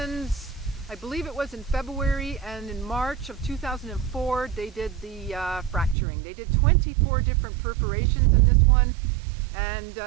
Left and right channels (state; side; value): drops out; left; at 6.0 s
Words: I believe it was in February, and in March of 2004 they did the fracturing. They did 24 different perforations in this one, and